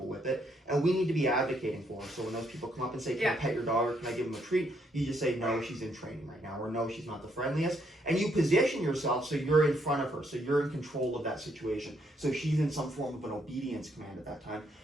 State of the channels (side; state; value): both; normal; correlation 0.73